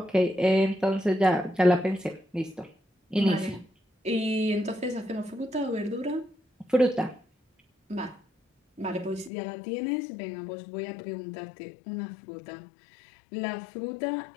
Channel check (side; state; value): right; drops out; at 9.3 s